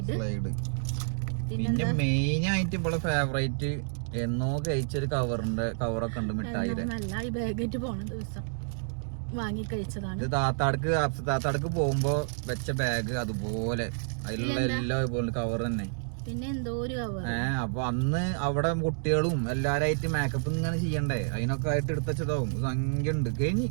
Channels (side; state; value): left; silent; digital silence